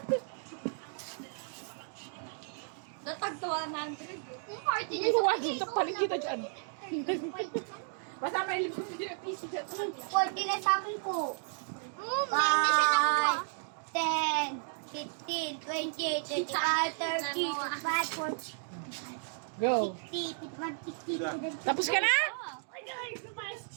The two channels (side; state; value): left; silent; 55 dB below the other